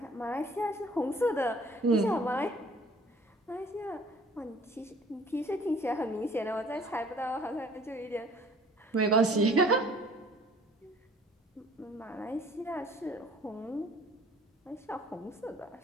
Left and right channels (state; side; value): normal; both; correlation 0.54